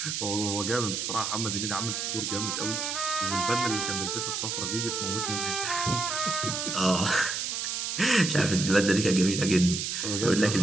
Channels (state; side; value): noise; right; hiss, 2 dB below the sound